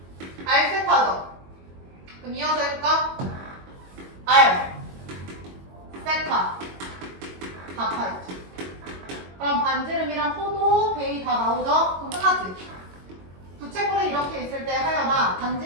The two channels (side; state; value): left; late; 22 ms